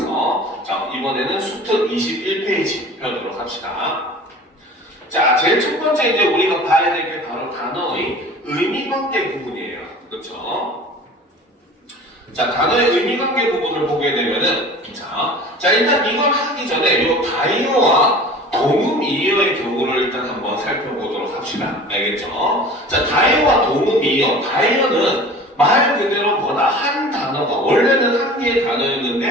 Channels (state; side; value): normal; both; correlation 0.41